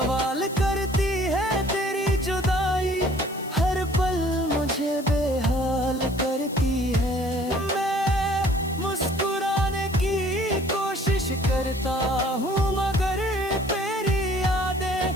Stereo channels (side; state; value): left; noise; hiss, 19 dB below the sound